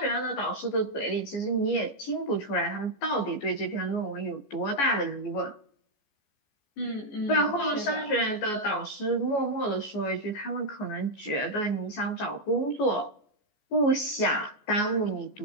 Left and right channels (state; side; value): late; right; 14 ms